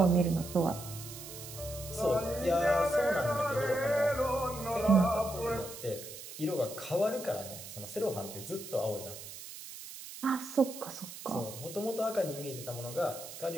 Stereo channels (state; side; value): noise; right; hiss, 12 dB below the sound